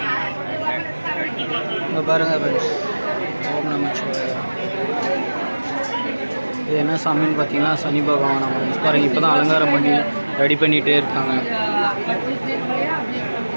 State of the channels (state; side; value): inverted; both; correlation -1.00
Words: இங்கே பாருங்கள் ஃப்ரெண்ட்ஸ் ஓம் நமச்சிவாய. இது என்ன சாமின்னு பார்த்தீங்கன்னா சனி பகவான் ஃப்ரெண்ட்ஸ் பாருங்கள். இப்போ தான் அலங்காரம் பண்ணி ரெடி பண்ணிகிட்டே இருக்காங்க.